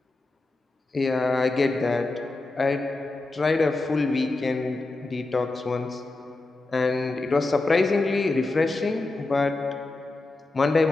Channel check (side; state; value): right; quieter; 3.1 dB